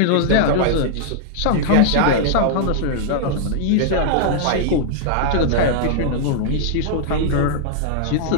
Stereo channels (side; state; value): both; different; correlation -0.01